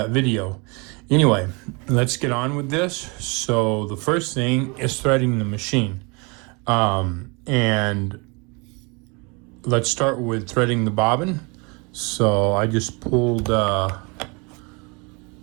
video. Anyway, let's get on with this. So the first thing is threading the machine. And let's start with threading the bobbin. So I just pulled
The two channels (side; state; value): left; quieter; 29.8 dB